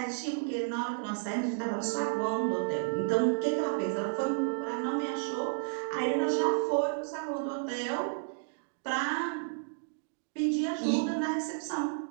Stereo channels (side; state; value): left; silent; digital silence